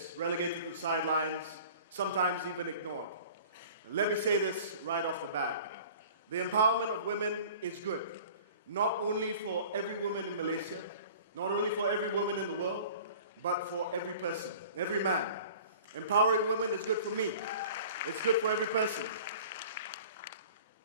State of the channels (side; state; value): both; inverted; correlation -0.44